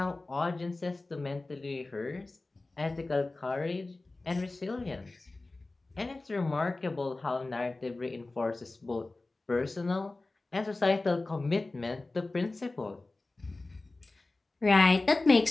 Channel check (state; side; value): quieter; right; 3.2 dB